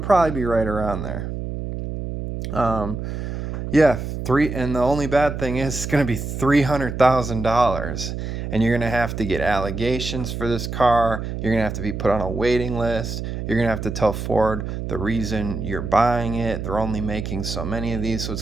be right around there. Yeah, and the only bad thing is it's going to be $300,000, and you're going to have to get allegations for this car. You're going to have to be put on a waiting list. You're going to have to tell Ford the reason you're buying it. They're only making so many of these, so it's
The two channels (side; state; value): right; noise; hum, 5 dB below the sound